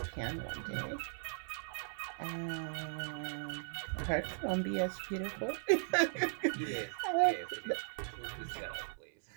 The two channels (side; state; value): left; silent; 52 dB below the other